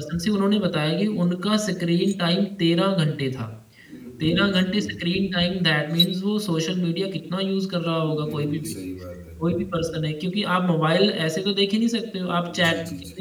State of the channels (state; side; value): identical; both; correlation 1.00